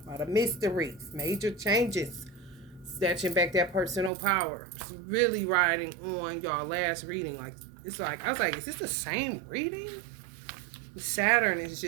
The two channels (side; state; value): left; drops out; at 4.1 s